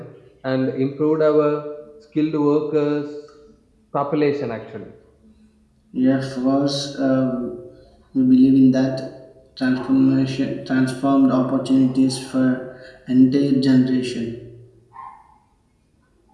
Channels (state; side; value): identical; both; correlation 1.00